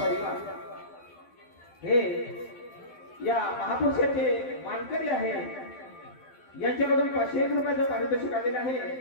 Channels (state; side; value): late; right; 12 ms